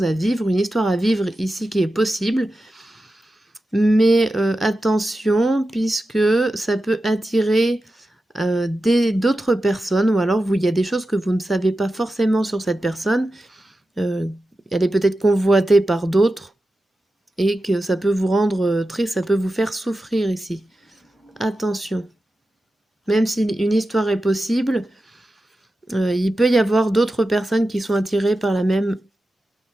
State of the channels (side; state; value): both; normal; correlation 0.92